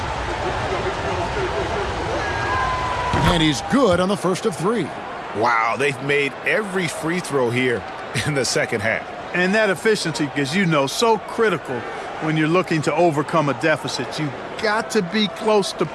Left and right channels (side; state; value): both; identical; correlation 1.00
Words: And he's good on the first of 3. Wow, they've made every free throw here in the second half. And that efficiency, as you know, so critical when you're looking to overcome a deficit. You've got to be close to